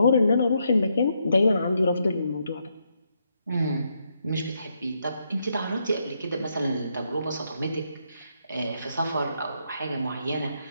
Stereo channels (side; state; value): both; inverted; correlation -0.78